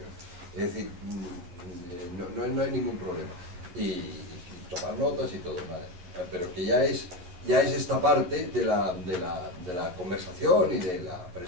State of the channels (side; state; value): left; late; 11 ms